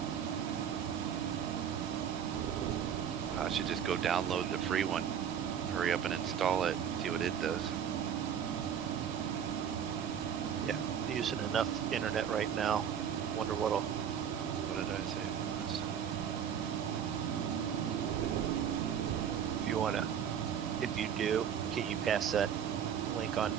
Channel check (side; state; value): left; quieter; 8.4 dB